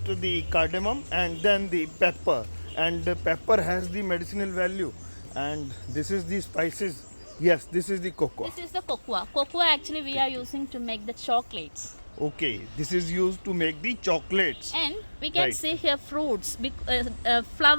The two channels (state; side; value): inverted; both; correlation -1.00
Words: the cardamom and then the pepper. And the pepper has the medicinal value. And this is the spices. Yes, this is the cocoa. This is the cocoa. Cocoa actually we are using to make the chocolates. Okay, this is used to make the chocolates. And we can Right. see here fruits,